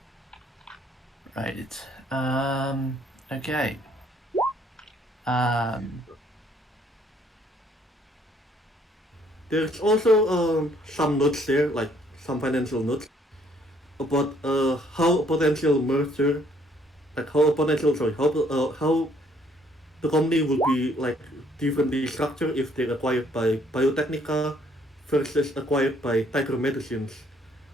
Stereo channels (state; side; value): normal; both; correlation 0.64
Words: Right. Okay. Um, There's also some notes there, like some financial notes about how a potential merger, like how a potential sorry, how the company will be like differently structured if they're acquired by Biotechnica versus acquired by Tiger Medicines.